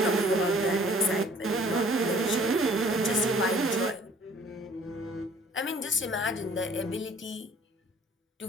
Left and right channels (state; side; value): normal; both; correlation 0.55